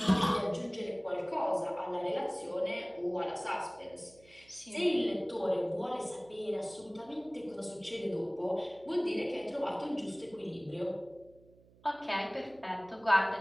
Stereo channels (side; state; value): right; noise; hum, 27 dB below the sound